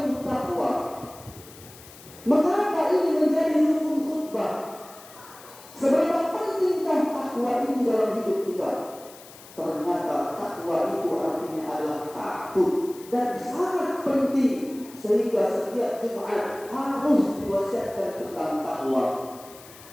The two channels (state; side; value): noise; left; hiss, 20 dB below the sound